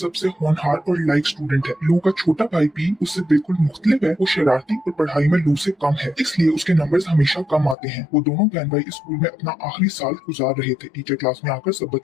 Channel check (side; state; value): right; drops out; at 7.8 s